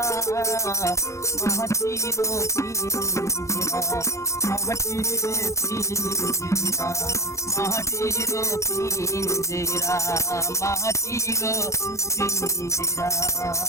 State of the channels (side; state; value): right; late; 0.14 ms